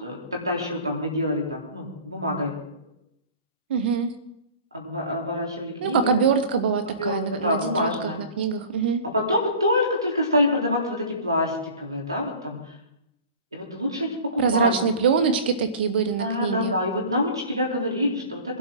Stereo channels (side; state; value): both; inverted; correlation -0.42